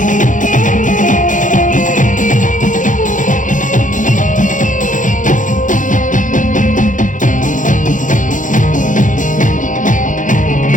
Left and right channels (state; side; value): late; right; 0.37 ms